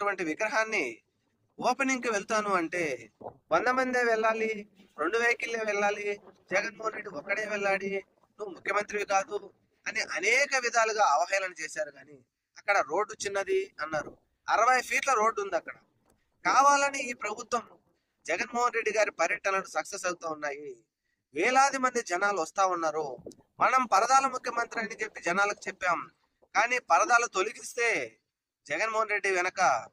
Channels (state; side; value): identical; both; correlation 1.00